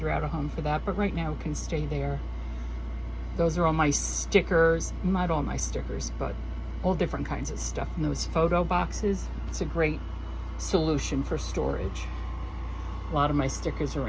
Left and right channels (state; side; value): identical; both; correlation 1.00